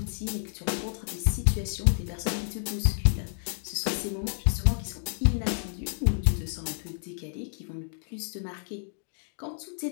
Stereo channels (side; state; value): right; silent; digital silence